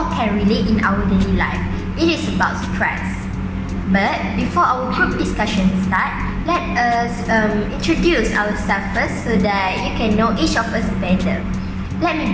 can relate in our daily life. It is about stress. But before our group discussion start, let us introduce ourselves first so that you can know each of us better. Let me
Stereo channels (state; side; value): identical; both; correlation 1.00